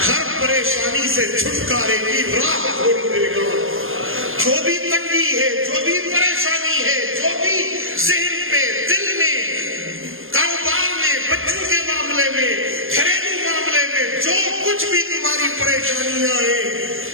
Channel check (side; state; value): left; late; 0.60 ms